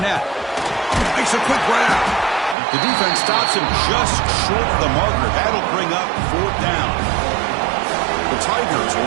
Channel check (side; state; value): left; drops out; at 2.6 s